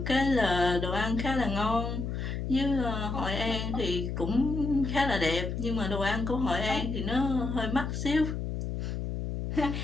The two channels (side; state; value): left; noise; hum, 3 dB below the sound